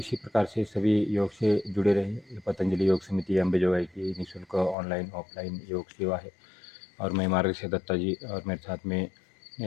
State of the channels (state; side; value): drops out; right; at 4.8 s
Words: प्रकार से सभी योग से जुड़े रहें। पतंजलि योग समिति अंबेजोगाई की निःशुल्क ऑनलाइन ऑफलाइन योग सेवा है। और मैं मार्गशीर दत्ता जी और मेरे साथ में